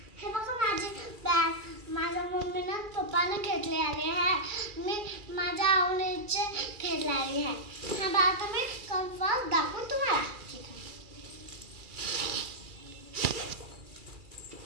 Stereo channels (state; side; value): late; left; 2.3 ms